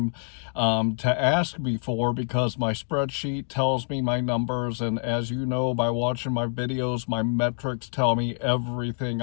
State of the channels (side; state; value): right; silent; 60 dB below the other